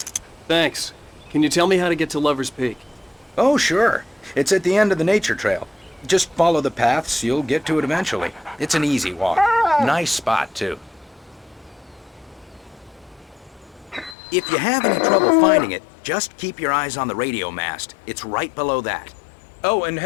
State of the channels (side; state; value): right; drops out; at 14.2 s